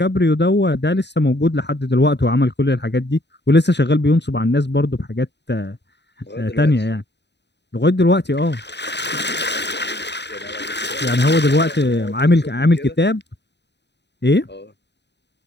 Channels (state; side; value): late; right; 0.50 ms